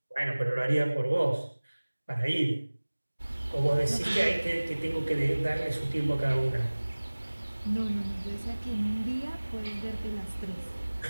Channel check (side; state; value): both; inverted; correlation -1.00